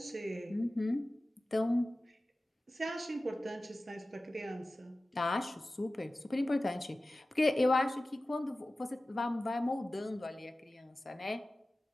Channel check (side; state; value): both; normal; correlation 0.96